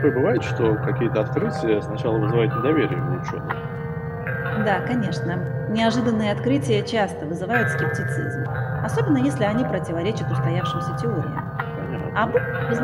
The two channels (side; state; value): both; identical; correlation 1.00